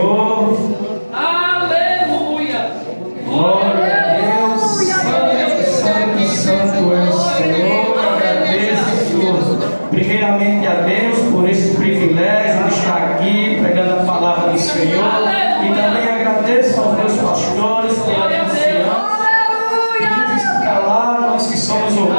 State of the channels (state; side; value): inverted; both; correlation -1.00